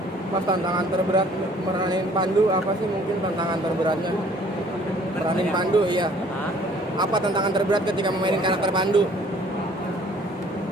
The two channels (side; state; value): both; normal; correlation 0.56